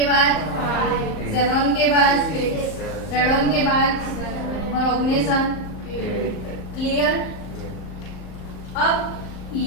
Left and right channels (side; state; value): right; late; 38 ms